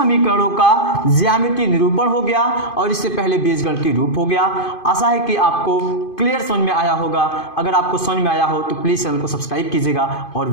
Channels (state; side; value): late; right; 2.5 ms